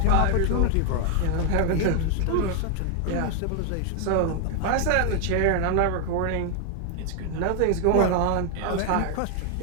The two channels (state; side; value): different; both; correlation 0.00